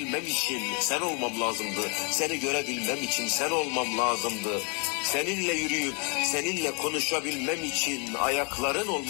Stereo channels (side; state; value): right; quieter; 34.9 dB